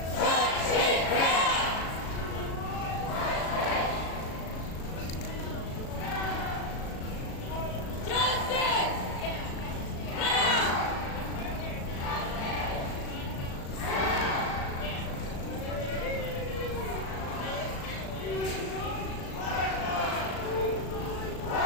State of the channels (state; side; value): late; right; 37 ms